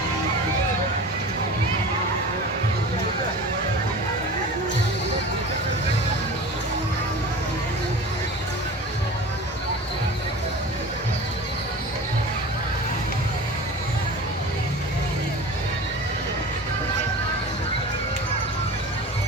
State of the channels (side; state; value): both; normal; correlation 0.36